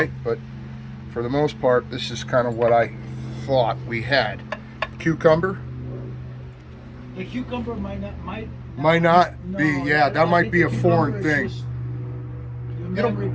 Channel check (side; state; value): both; identical; correlation 1.00